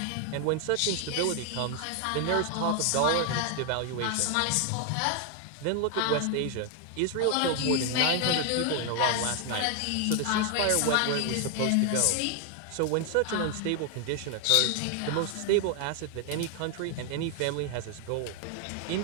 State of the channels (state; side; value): different; both; correlation 0.00